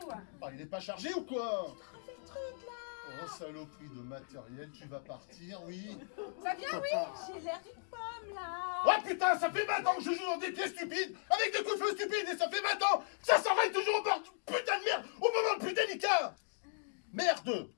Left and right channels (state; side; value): silent; right; digital silence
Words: Ah, il est pas chargé ou quoi? Refais le truc là. Oh, saloperie de matériel, tu vas partir, oui. Ça vient, oui? J'ai l'air d'une pomme là. Oh putain, ça fait 20 ans que je joue dans des pièces stupides, avec des coups de feu stupides, et ça fait 20 ans que ça s'enraye toujours au bord de putain de merde, au moment le plus délicat. Merde.